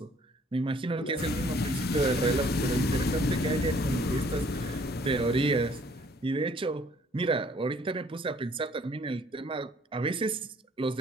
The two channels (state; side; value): normal; both; correlation 0.60